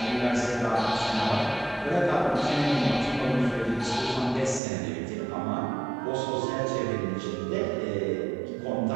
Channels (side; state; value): left; drops out; at 4.6 s